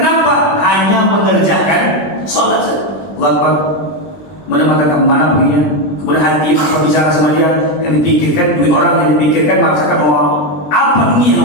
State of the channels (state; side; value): late; right; 21 ms